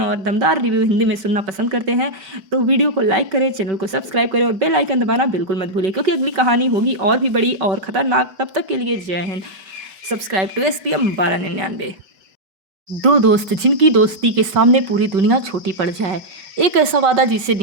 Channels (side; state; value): left; late; 5.3 ms